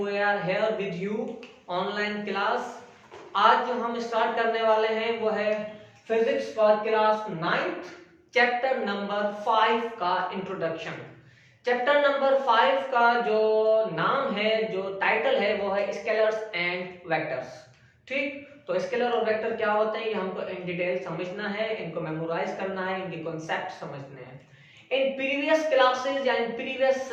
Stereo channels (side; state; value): both; identical; correlation 1.00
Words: are here with you online class. आज जो हम start करने वाले हैं वो है physics for class 9th chapter number 5 का इंट्रोडक्शन। चैप्टर नंबर 5 का जो नाम है, जो टाइटल है वो है स्केलर्स एंड वेक्टर्स। ठीक, तो स्केलर और वेक्टर क्या होते हैं ये हमको इन डिटेल समझना है, इनको मेमोराइज करना है, इनके कॉन्सेप्ट समझने हैं। In previous classes and previous